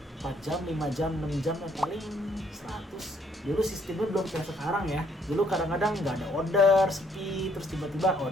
4 jam, 5 jam, 6 jam paling 100. Dulu sistemnya belum kayak sekarang ya. Dulu kadang-kadang nggak ada order, sepi, terus tiba-tiba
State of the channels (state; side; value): normal; both; correlation 0.67